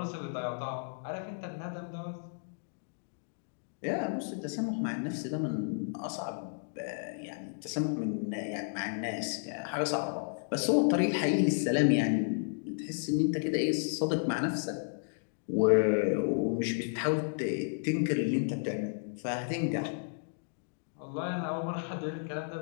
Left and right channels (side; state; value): right; silent; digital silence